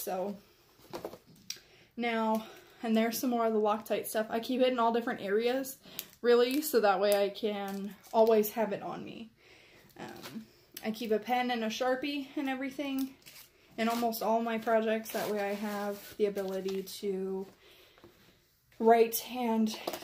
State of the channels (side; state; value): both; identical; correlation 1.00